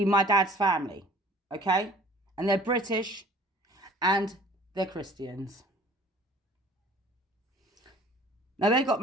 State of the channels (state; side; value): normal; both; correlation 0.50